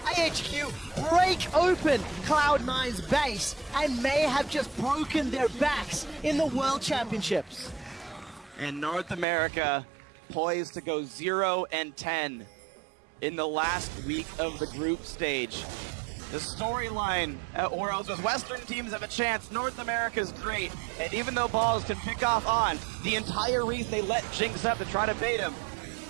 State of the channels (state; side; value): drops out; left; at 9.2 s